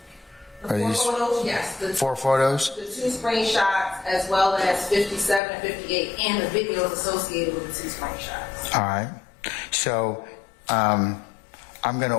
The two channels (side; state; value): right; drops out; at 5.4 s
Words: Photos, yes. The 4 photos? The 2 screenshots, as well as 57 and 58, and the videos associated with the 2 screenshots. All right. So I'm going to